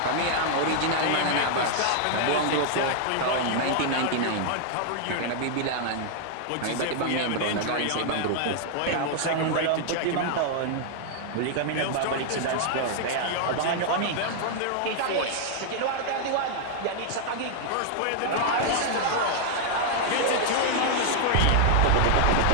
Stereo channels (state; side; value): different; both; correlation -0.01